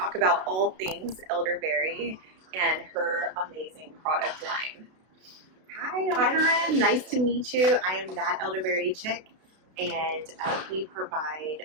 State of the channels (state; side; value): late; left; 32 ms